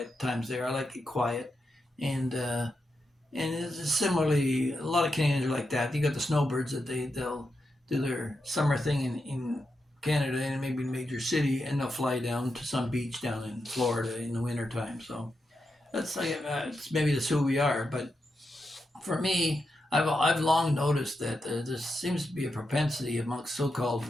times there. I like it quiet, and it's similarly a lot of Canadians are like that. You got the snowbirds that they'll do their summer thing in Canada and maybe a major city, and they'll fly down to some beach down in Florida in the wintertime. So that's like it's maybe that's who we are. But for me, I've long noticed that there seems to be a propensity amongst so-called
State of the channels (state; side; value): normal; both; correlation 0.86